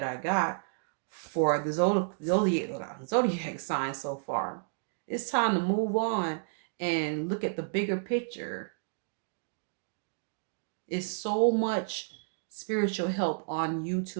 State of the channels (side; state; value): left; silent; digital silence